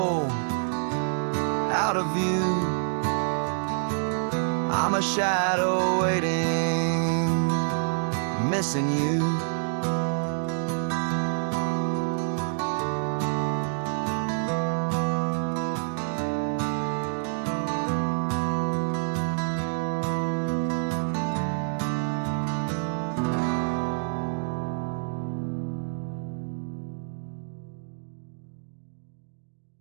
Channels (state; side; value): silent; left; digital silence